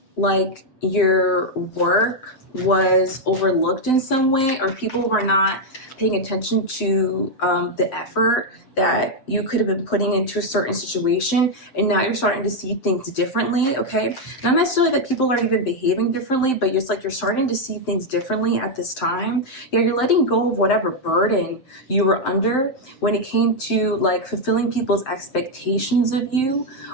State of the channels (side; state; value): right; late; 7.8 ms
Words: like your work was overlooked in some way, or people were not paying attention to the effort that you could have been putting into a certain situation, and now you're starting to see things differently, okay? Not necessarily that people are even behaving differently, but it's like you're starting to see things differently at this time. Yeah, you're letting go of whatever burden you were under when it came to like fulfilling people's expectations of you,